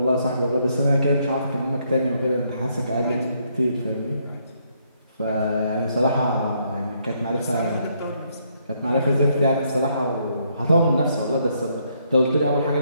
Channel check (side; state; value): both; inverted; correlation -0.73